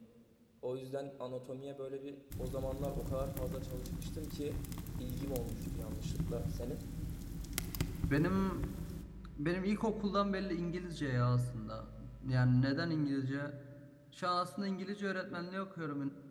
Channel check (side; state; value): both; identical; correlation 1.00